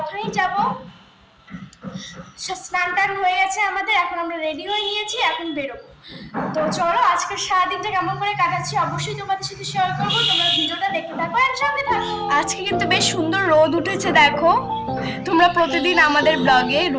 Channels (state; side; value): identical; both; correlation 1.00